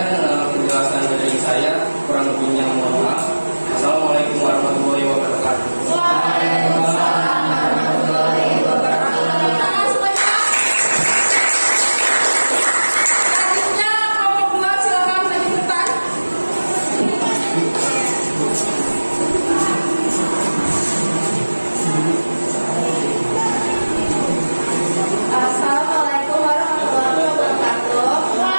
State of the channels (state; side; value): inverted; both; correlation -1.00